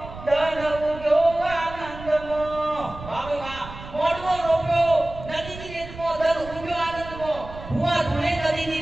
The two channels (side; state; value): right; noise; rumble, 14 dB below the sound